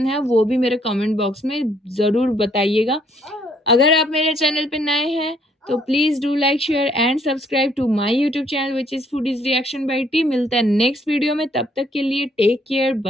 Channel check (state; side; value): normal; both; correlation 0.66